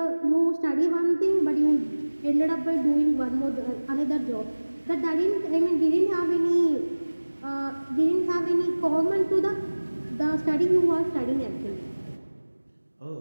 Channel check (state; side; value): inverted; both; correlation -1.00